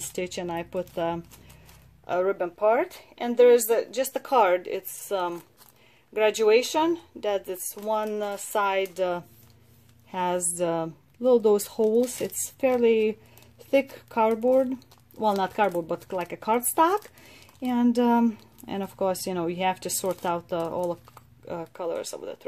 and I put a ribbon part. And there's just a card. It's graduation, that this one side has little those holes. It's fairly thick cardboard, well, not cardboard, but like a cardstock. And of course, you know, you have to sort out all the colors of the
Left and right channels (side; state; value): both; identical; correlation 1.00